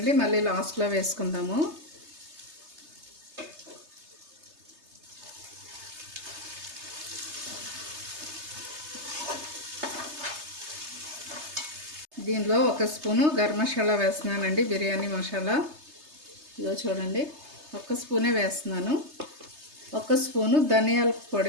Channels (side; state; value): left; late; 3.3 ms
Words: మళ్ళీ లాస్ట్లో వేసుకుందాము. దీనిలో 1 స్పూను గరం మసాలా వేస్తున్నానండి, బిర్యానీ మసాలా. ఇదో చూడండి, 1 స్పూనే వేస్తున్నాను. 1 స్పూను ధనియాల